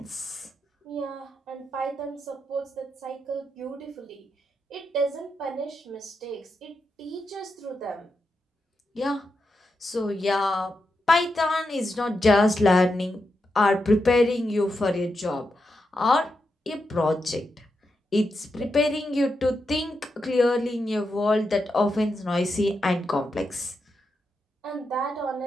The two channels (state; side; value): normal; both; correlation 0.86